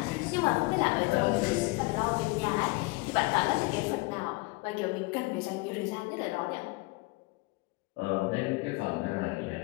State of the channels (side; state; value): right; quieter; 24.2 dB